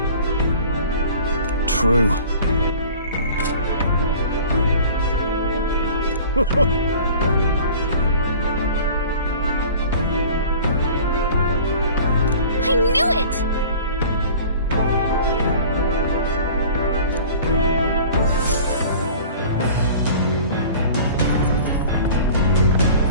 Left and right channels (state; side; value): inverted; both; correlation -0.44